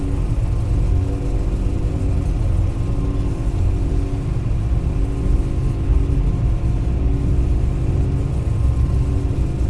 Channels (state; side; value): identical; both; correlation 1.00